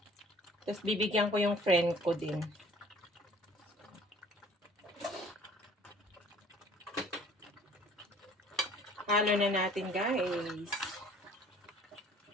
Tapos, bibigyan ko yung friend ko din. Halo na natin guys.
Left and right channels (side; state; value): both; normal; correlation 0.52